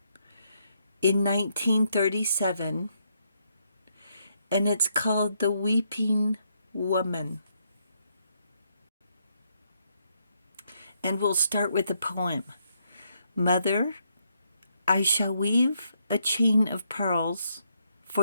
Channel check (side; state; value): both; inverted; correlation -0.76